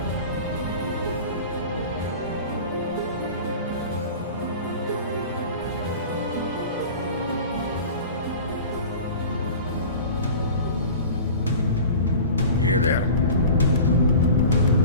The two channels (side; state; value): both; inverted; correlation -0.38